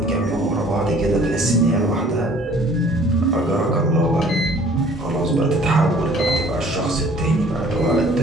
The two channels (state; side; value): normal; both; correlation 0.54